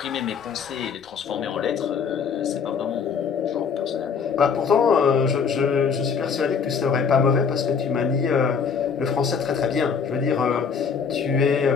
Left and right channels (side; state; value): right; quieter; 6.1 dB